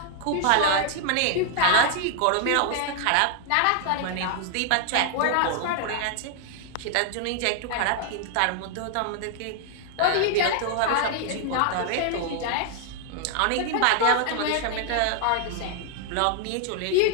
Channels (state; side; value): different; both; correlation 0.00